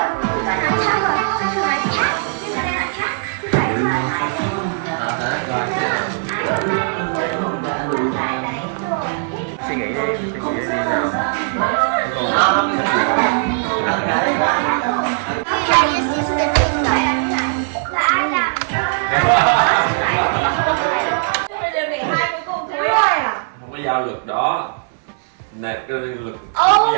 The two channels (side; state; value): left; silent; digital silence